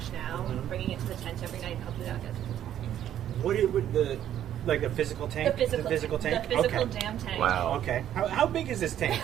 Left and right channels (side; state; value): left; quieter; 11.0 dB